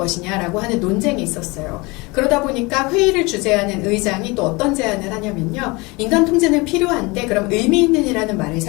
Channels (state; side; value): quieter; right; 25.2 dB